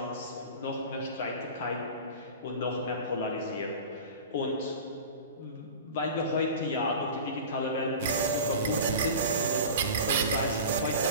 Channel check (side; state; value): both; inverted; correlation -0.34